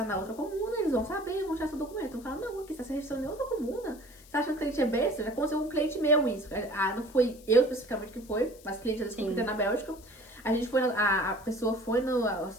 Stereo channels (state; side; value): noise; left; hiss, 23 dB below the sound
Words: na outra comuna, eles vão saber, vão tirar seu documento. Vão falar, não, aqui você está se registrando em outra comuna. Você acha que o cliente é besta? Já aconteceu com um cliente meu isso. Ah, não foi eu especificamente que foi, mas cliente já descobriu na Bélgica. A gente foi, a pessoa foi